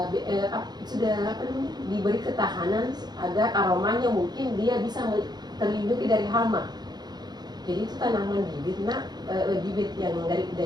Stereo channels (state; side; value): late; left; 0.20 ms